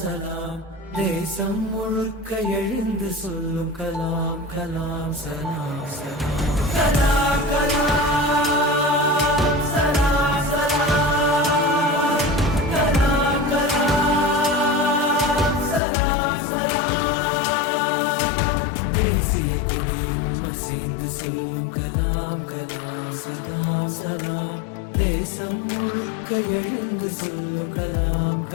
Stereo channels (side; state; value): right; drops out; at 15.8 s